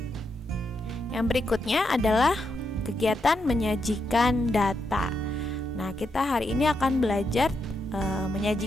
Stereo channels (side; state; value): both; normal; correlation 0.82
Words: Yang berikutnya adalah kegiatan menyajikan data. Nah, kita hari ini akan belajar